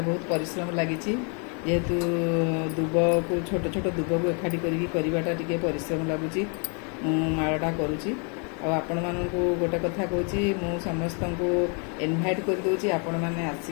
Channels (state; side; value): quieter; right; 38.0 dB